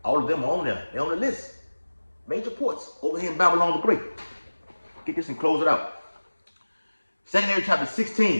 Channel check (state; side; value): inverted; both; correlation -1.00